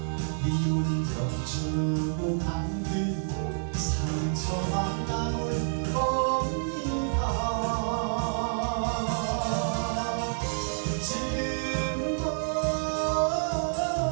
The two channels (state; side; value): silent; left; 59 dB below the other